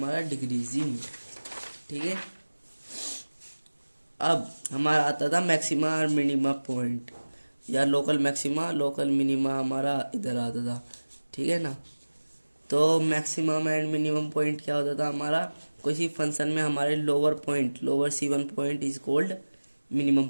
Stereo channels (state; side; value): inverted; both; correlation -1.00